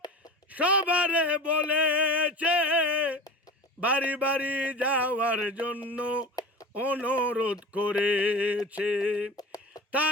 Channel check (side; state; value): both; normal; correlation 0.34